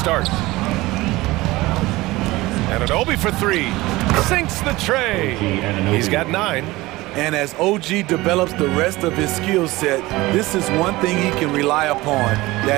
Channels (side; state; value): left; quieter; 19.7 dB